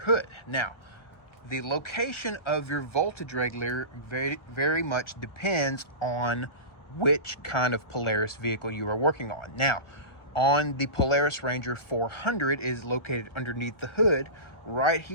Now, the location of your voltage regulator very much depends on which kind of Polaris vehicle you are working on. Now, on the Polaris Ranger 400 is located underneath the hood, right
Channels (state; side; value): late; right; 1.0 ms